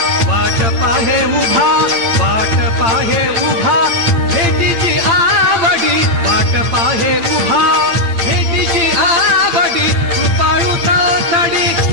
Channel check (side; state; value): left; late; 8.8 ms